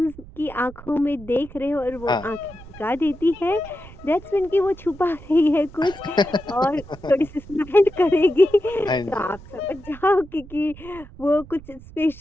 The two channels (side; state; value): right; noise; rumble, 18 dB below the sound